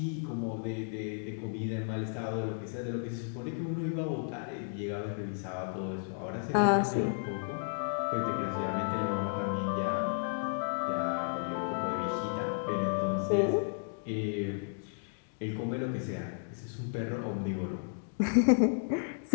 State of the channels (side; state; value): right; silent; digital silence